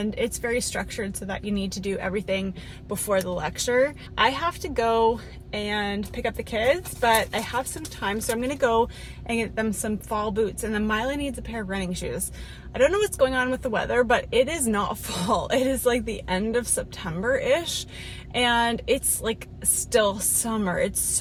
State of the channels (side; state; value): both; identical; correlation 1.00